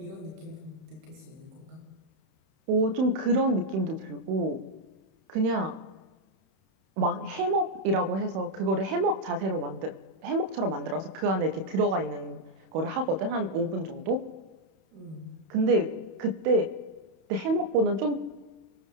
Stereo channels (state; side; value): late; left; 31 ms